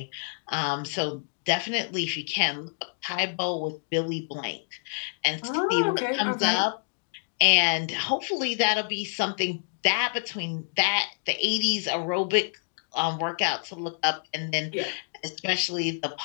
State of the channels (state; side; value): silent; right; digital silence